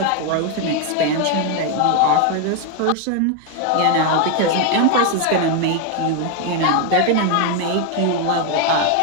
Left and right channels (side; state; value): both; different; correlation 0.01